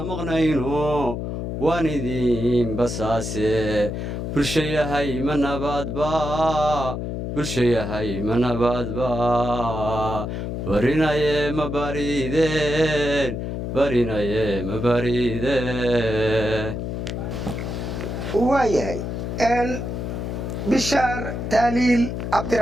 maqnayno waan idin basaase bulsho yahay ma nabadba bulsho yahay ma nabadba barinaye ma barideen barinaye ma barideen waayahay bishaar tahliil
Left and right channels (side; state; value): left; noise; hum, 4 dB below the sound